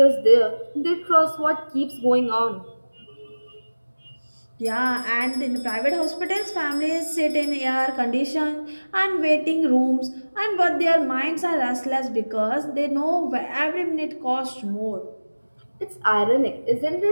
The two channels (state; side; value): inverted; both; correlation -1.00